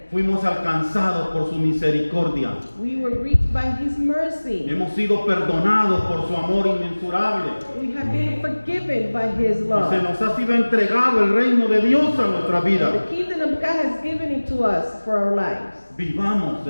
Fuimos alcanzados por su misericordia. We were reached by His mercy. Hemos sido perdonados por su amor inmensurable. We have been forgiven by His Y se love. nos ha sido entregado el reino de Dios a nuestra vida. The kingdom of God has given it to us for our lives. Vivamos,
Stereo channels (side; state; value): both; inverted; correlation -1.00